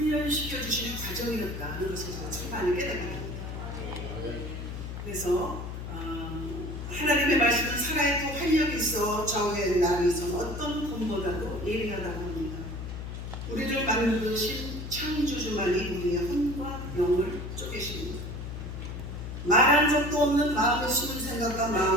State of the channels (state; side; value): noise; left; hum, 7 dB below the sound